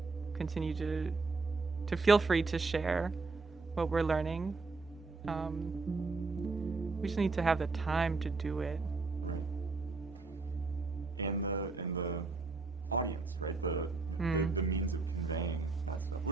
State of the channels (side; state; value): left; quieter; 3.9 dB